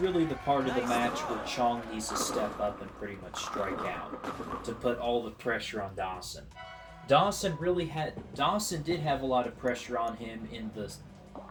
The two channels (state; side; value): identical; both; correlation 1.00